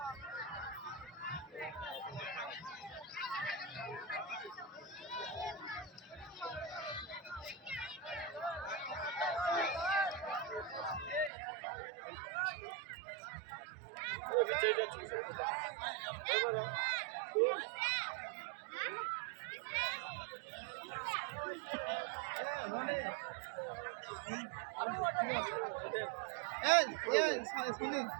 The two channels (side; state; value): left; drops out; at 11.3 s